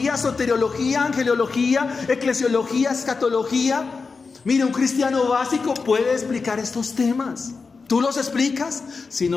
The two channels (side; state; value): right; quieter; 4.6 dB